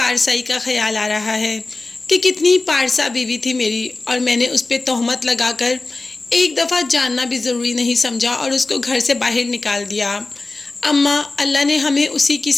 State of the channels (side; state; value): right; quieter; 3.3 dB